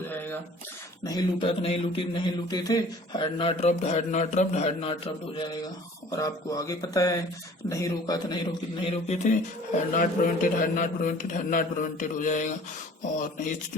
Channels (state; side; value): normal; both; correlation 0.49